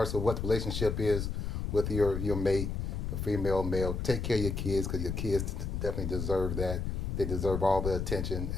of what the relationship is with your mate, a female, male, take care of your kids, because your kids definitely deserve that. They deserve all the attention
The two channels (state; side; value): noise; left; rumble, 2 dB below the sound